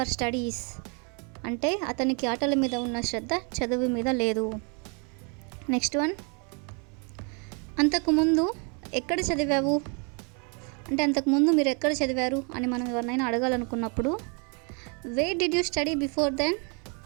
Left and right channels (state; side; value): quieter; left; 35.8 dB